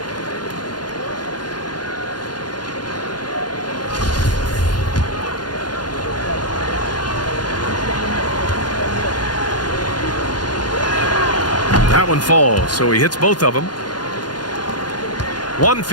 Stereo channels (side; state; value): right; late; 0.70 ms